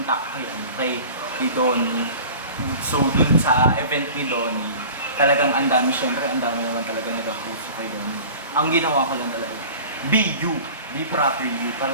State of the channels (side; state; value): both; inverted; correlation -0.41